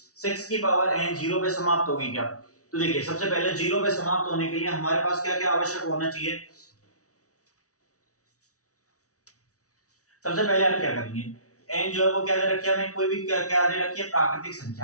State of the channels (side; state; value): right; late; 0.66 ms